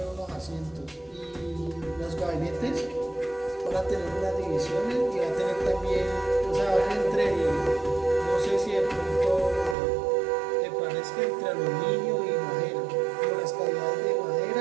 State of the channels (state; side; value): drops out; left; at 9.8 s